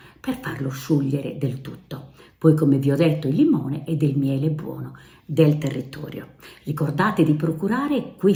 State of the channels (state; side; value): identical; both; correlation 1.00